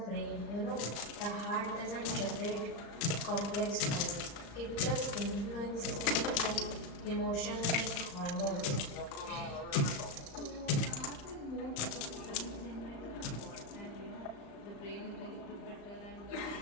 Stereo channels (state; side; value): late; right; 35 ms